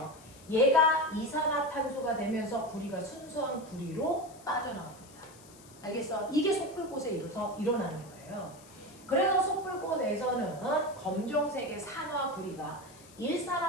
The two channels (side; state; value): left; noise; hiss, 22 dB below the sound